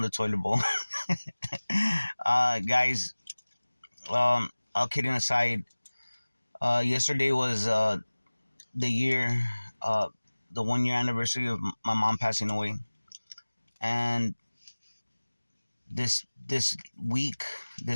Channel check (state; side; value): inverted; both; correlation -1.00